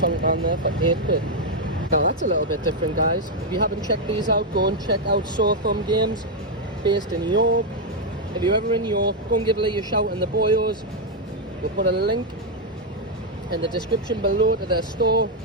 down there for 8 quid. Now that's a little bit different, guys. If you haven't checked these out, go and check out Sore Thumb Games, based in York. If you're ever in York, go and give Lee a shout in the Boyos. We'll put a link in the description below to their store.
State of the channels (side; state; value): both; normal; correlation 0.00